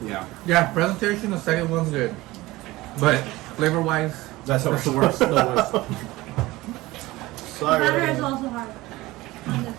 Yeah. Yeah, presentation, the second one's good, but flavor-wise, That's that's the worst. The worst. The Sorry. batter is everyone. also hard. On this.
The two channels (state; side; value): quieter; left; 19.2 dB